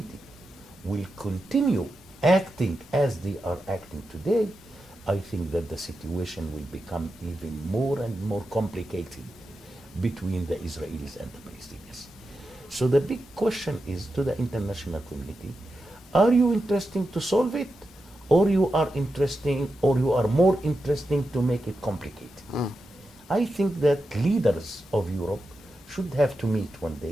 will continue acting as they are acting today, I think that the situation will become even more and more complicated between the Israelis and the Palestinians. So the big question is to the international community, are you interested to solve it, or you are more interested to make it complicated? I think that leaders of Europe should have to meet one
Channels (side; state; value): both; normal; correlation 0.89